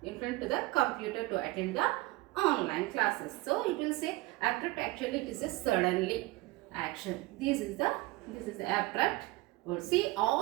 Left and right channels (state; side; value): quieter; left; 20.5 dB